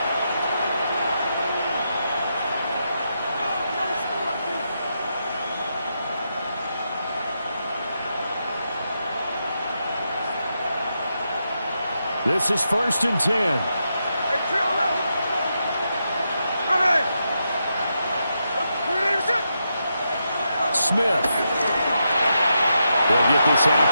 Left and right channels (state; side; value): inverted; both; correlation -0.84